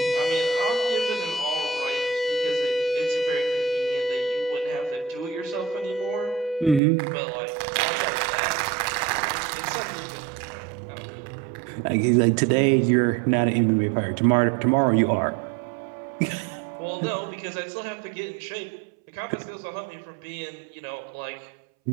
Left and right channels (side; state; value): left; drops out; at 6.8 s